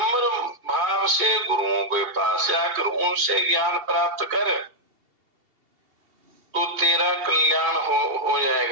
भाव से गुरुओं के पास जाकर उनसे ज्ञान प्राप्त कर, तो तेरा कल्याण हो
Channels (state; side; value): late; left; 2.7 ms